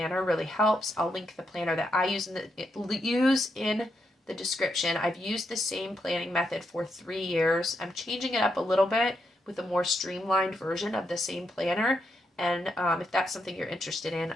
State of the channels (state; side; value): normal; both; correlation 0.81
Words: really helps. I'll link the planner that I use in the description. I've used the same planning method for 3 years. I'm changing it up a little bit with a more streamlined version of the same planner. And if that's something you're interested in,